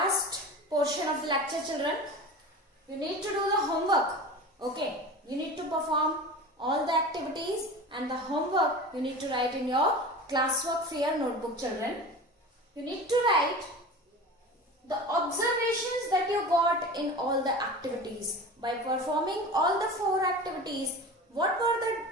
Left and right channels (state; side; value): normal; both; correlation 0.33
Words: portion of the lecture, children. You need to do the homework. Okay? You need to perform all the activities and the homework you need to write in your classwork fair notebook, children. You need to write the observations that you got in all the activities. By performing all the 4 activities, what were